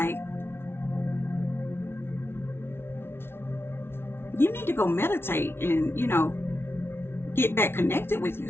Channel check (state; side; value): late; right; 0.12 ms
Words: you need to go meditate and, get back connected with